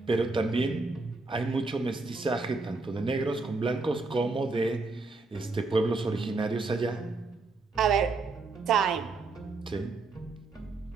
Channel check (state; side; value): quieter; left; 3.8 dB